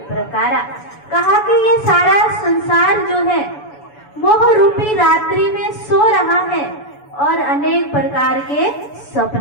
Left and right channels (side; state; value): right; late; 7.0 ms